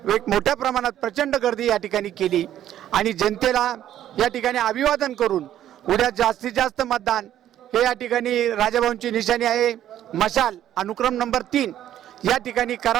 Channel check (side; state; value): left; quieter; 11.6 dB